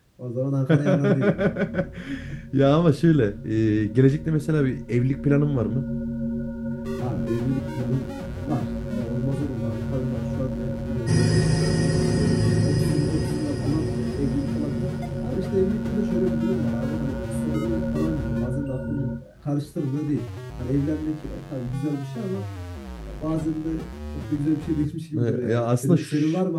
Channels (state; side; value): identical; both; correlation 1.00